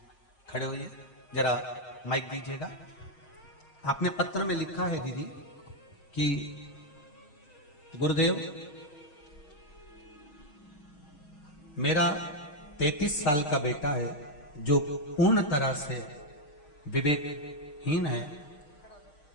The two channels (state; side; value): late; right; 6.5 ms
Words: खड़े होइए, जरा माइक दीजिएगा। आपने पत्र में लिखा है दीदी कि गुरुदेव, मेरा 33 साल का बेटा है जो पूर्ण तरह से विवेकहीन है,